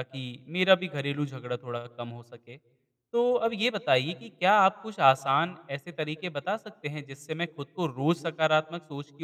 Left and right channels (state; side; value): identical; both; correlation 1.00